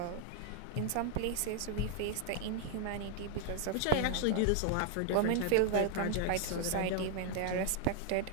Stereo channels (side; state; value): both; different; correlation 0.00